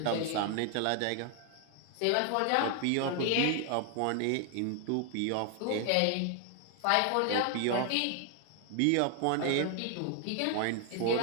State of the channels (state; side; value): different; both; correlation 0.00